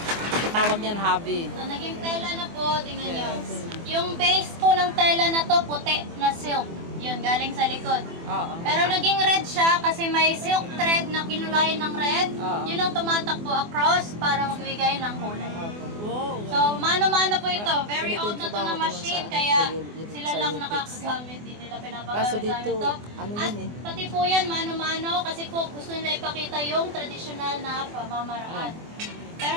Tawag niyan hobby. So, naging tela na po, tingnan nyo. Yes. Yung base po ng tela na to, puti na silk. Yun, galing sa likod. Oo. Pero naging red siya kasi may silk thread na kinulayan ng red. Oo. Yun ang tumatakbo across para magbigay ng kulay. Wow. So, mano-mano po ito. Very Ganito old yung na to trabaho na ko nun machine, sa- kaya sa sila sa lang Utex. nakakagamit. Hindi nila Kaso pinapagamit dito, ito. ano At yun eh. pati po yan, mano-mano, kasi po gusto nila ipakita yung traditional na pamamaraan. Pero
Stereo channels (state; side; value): late; left; 24 ms